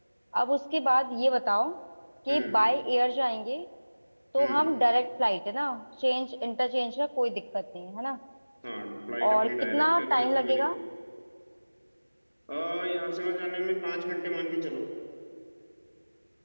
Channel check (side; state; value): both; inverted; correlation -1.00